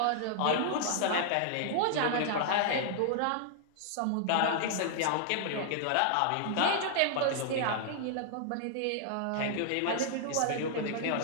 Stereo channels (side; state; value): both; different; correlation -0.01